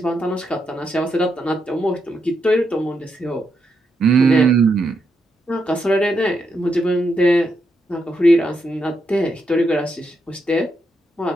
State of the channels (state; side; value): normal; both; correlation 0.81